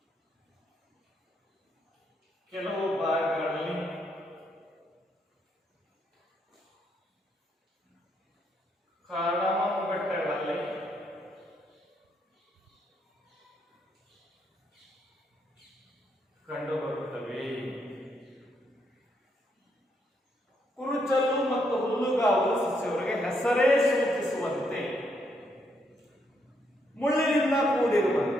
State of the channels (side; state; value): both; normal; correlation 0.76